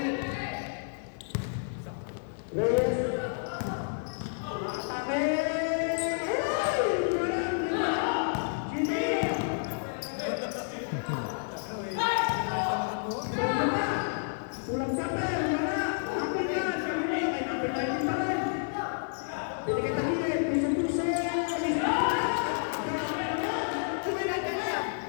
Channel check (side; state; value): right; silent; digital silence